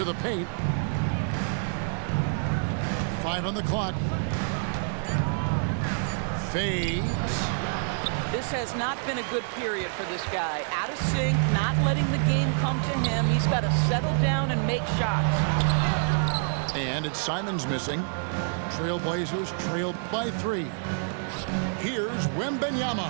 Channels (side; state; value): left; silent; 60 dB below the other